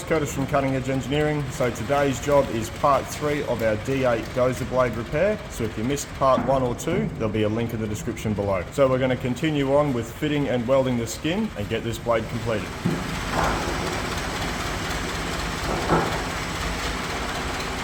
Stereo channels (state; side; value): identical; both; correlation 1.00